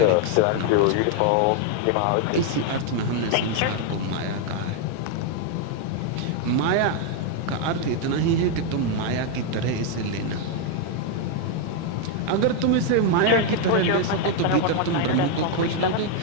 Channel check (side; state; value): both; different; correlation 0.01